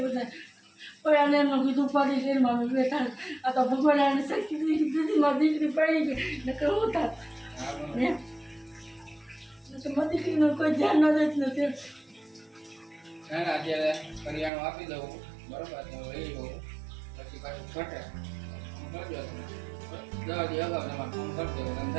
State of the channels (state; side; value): drops out; left; at 14.5 s